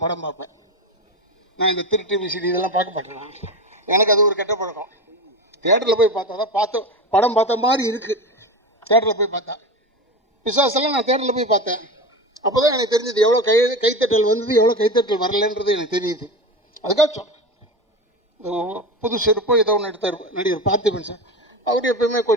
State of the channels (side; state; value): both; normal; correlation 0.24